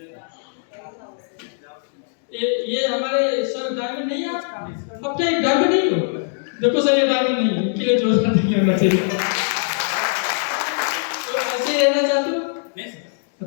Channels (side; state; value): right; silent; digital silence